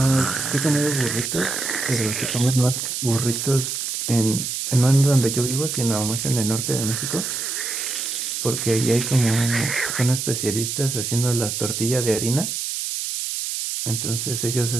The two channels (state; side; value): noise; right; hiss, 3 dB below the sound